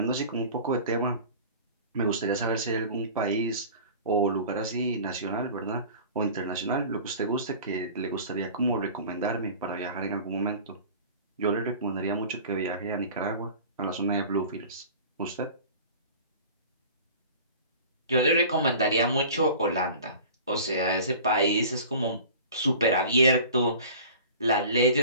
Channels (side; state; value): both; inverted; correlation -0.42